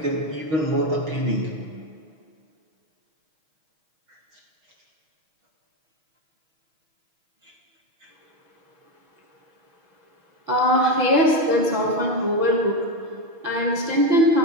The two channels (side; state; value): left; late; 6.3 ms